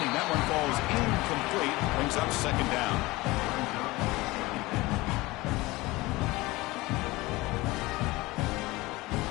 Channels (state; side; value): quieter; right; 20.9 dB